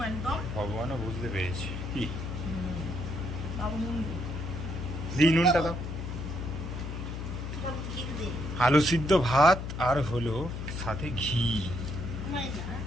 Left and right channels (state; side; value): noise; left; hum, 6 dB below the sound